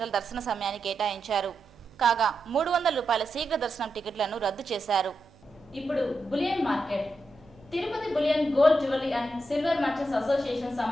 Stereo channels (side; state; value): right; noise; hum, 27 dB below the sound